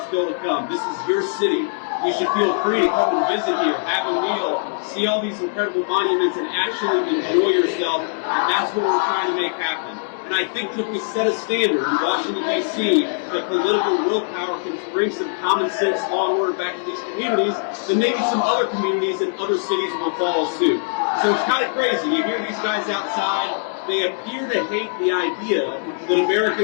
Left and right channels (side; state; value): right; silent; digital silence